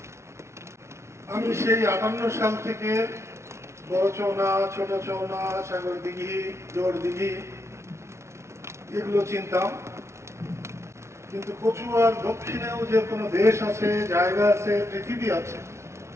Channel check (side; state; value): left; late; 0.13 ms